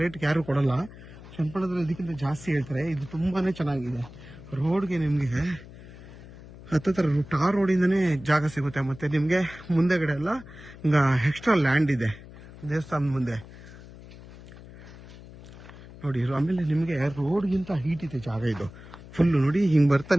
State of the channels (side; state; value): left; noise; hum, 17 dB below the sound